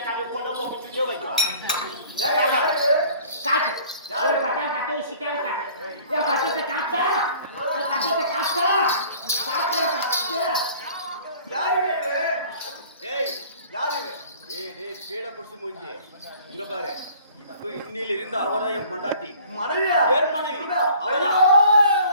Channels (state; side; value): inverted; both; correlation -0.51